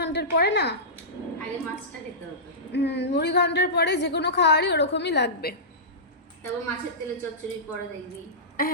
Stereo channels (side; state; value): both; normal; correlation -0.18